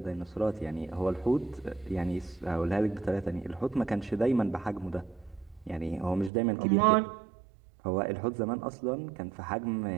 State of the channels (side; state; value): left; drops out; at 6.3 s